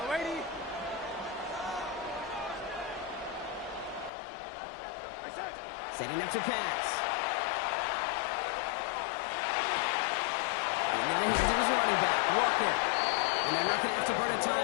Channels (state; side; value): drops out; right; at 4.1 s